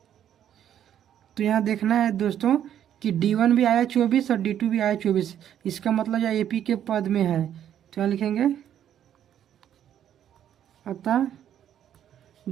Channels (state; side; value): quieter; left; 10.2 dB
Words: तो यहाँ देखना है दोस्तों कि D1 भी आया 24 और D2 भी आया 24, इसका मतलब यह AP के पद में है। तो यहाँ लिखेंगे अतः